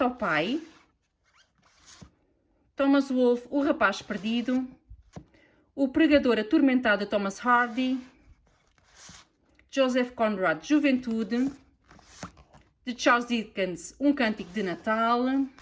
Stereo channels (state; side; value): identical; both; correlation 1.00